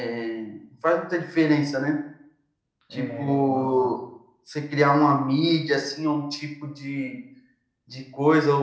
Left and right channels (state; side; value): identical; both; correlation 1.00